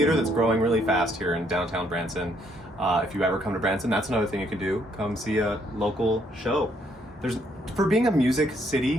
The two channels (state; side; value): normal; both; correlation 0.70